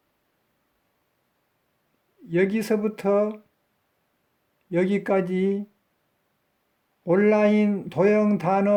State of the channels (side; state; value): both; identical; correlation 1.00